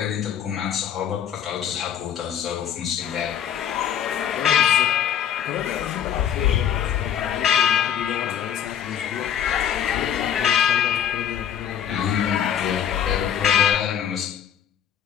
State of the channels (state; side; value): quieter; right; 9.4 dB